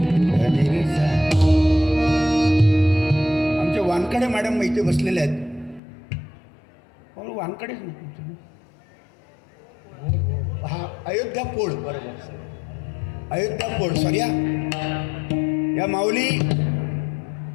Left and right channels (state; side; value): drops out; right; at 5.8 s